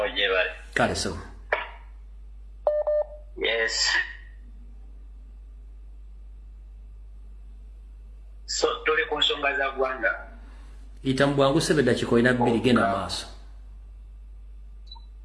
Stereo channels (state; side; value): identical; both; correlation 1.00